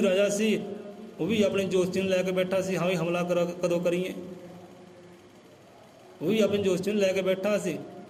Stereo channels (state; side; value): identical; both; correlation 1.00